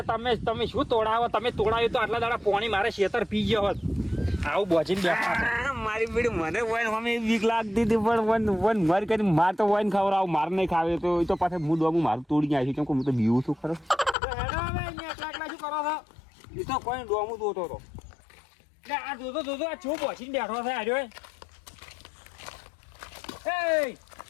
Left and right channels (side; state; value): right; drops out; at 14.2 s